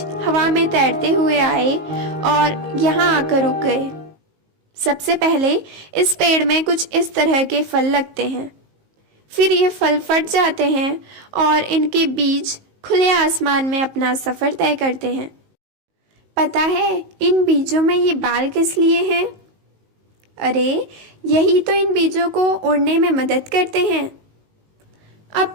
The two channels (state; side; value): late; left; 19 ms